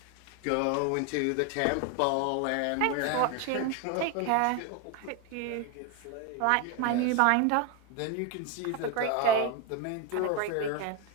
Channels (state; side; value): different; both; correlation 0.02